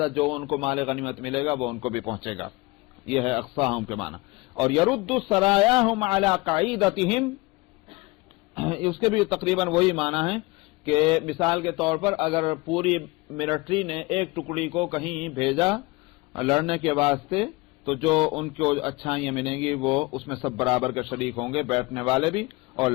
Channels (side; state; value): right; quieter; 23.5 dB